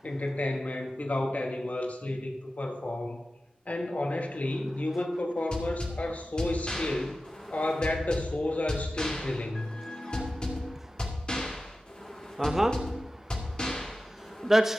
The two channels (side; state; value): both; normal; correlation 0.94